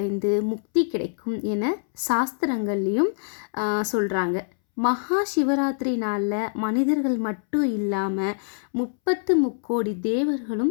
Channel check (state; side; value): silent; right; 62 dB below the other